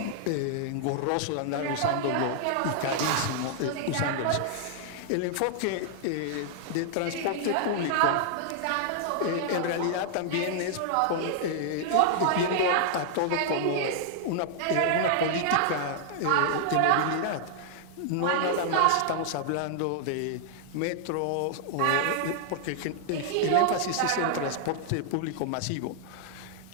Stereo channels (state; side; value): different; both; correlation -0.01